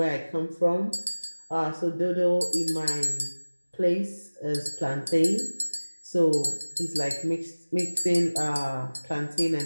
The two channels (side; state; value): both; inverted; correlation -1.00